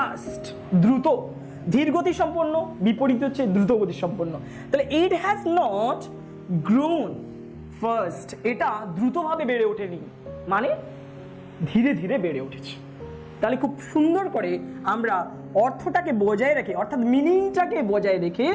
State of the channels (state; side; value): identical; both; correlation 1.00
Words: দ্রুত। ধীর গতি সম্পন্ন বিপরীত হচ্ছে দ্রুত গতি সম্পন্ন। তাহলে it has not grown first, এটা দ্রুতভাবে বেড়ে ওঠেনি, মানে ধীরে ধীরে বেড়ে উঠেছে। তাহলে খুব সুন্দর করে আমরা অর্থটাকে বজায় রেখে, অর্থাৎ মিনিংটাকে বজায় রেখে